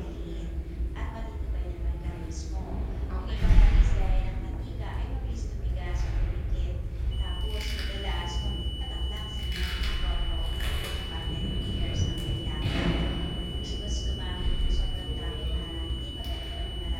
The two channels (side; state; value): both; identical; correlation 1.00